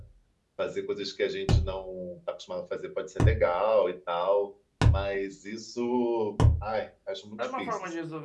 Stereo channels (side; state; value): both; identical; correlation 1.00